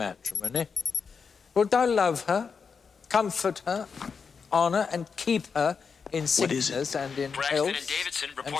Wilt thou love her, comfort her, honour and keep her in sickness and in health, and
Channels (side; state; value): right; quieter; 5.7 dB